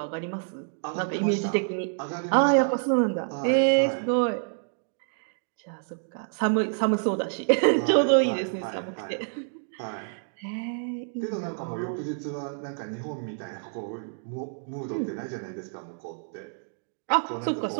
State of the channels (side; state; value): left; silent; digital silence